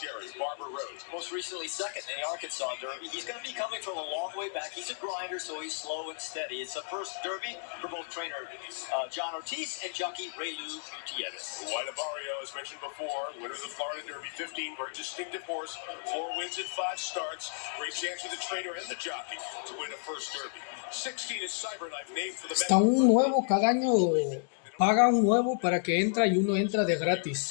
Barbara Rose. Most recently second in the Arkansas Derby. He's going to be coming from a long way back. He's a grinder, so he's slow and steady. It's the first Derby for both trainer John Ortiz and jockey Raylu Gutierrez. White Barrio, as mentioned before, winner of the Florida Derby, 15, very distinctive horse, 4 wins in 5 starts. Great chance for the trainer and the jockey to win a first Derby. 16 is Cyberknife, named for the... Está un nuevo, cada año paga un nuevo para que entra y uno entra de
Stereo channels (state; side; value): silent; right; digital silence